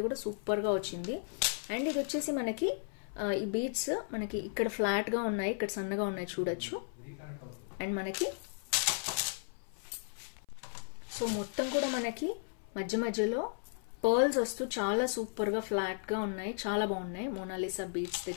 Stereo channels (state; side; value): silent; right; 54 dB below the other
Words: కూడా సూపర్గా వచ్చింది. అండ్ ఇది వచ్చేసి మనకి ఈ బీడ్స్ మనకి ఇక్కడ ఫ్లాట్గా ఉన్నాయి, ఇక్కడ సన్నగా ఉన్నాయి చూడొచ్చు. అండ్ మనకి సో మొత్తం కూడా మనకి మధ్య మధ్యలో పర్ల్స్ వస్తూ చాలా సూపర్గా ఫ్లాట్గా ఉన్నాయి. చాలా బాగున్నాయి. మోనాలిసా బీడ్స్